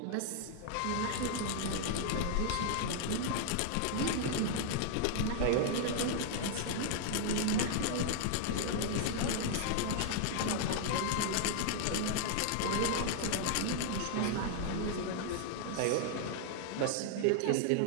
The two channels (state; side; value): different; both; correlation 0.00